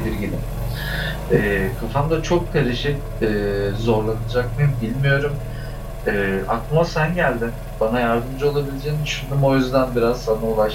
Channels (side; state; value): both; identical; correlation 1.00